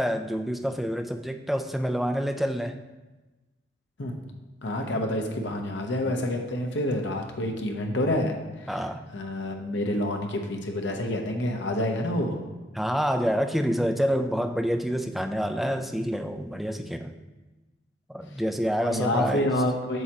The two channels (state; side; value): normal; both; correlation 0.67